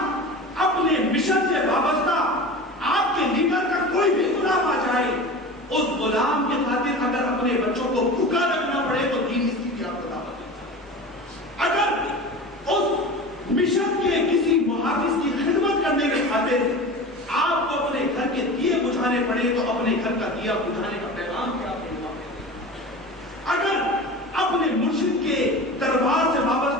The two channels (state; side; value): normal; both; correlation 0.33